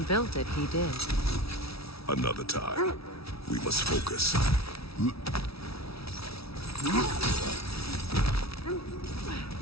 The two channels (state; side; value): late; right; 0.76 ms